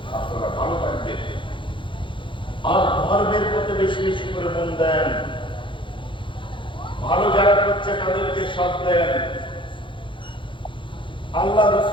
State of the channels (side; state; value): right; late; 0.24 ms